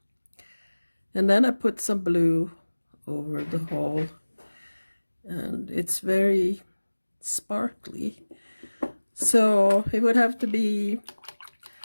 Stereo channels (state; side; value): inverted; both; correlation -1.00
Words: and then I put some blue over the hole, and it's very sparkly. So it would have to be